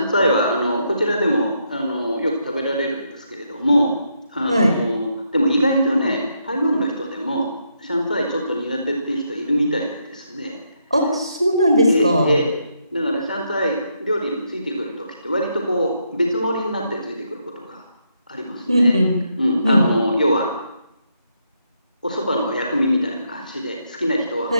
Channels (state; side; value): inverted; both; correlation -0.78